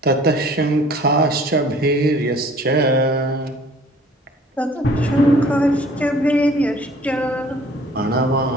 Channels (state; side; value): normal; both; correlation 0.52